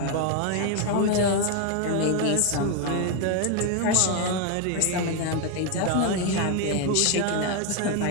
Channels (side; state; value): both; different; correlation 0.01